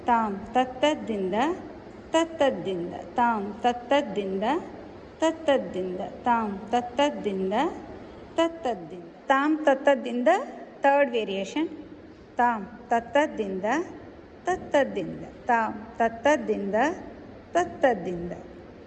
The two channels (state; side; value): identical; both; correlation 1.00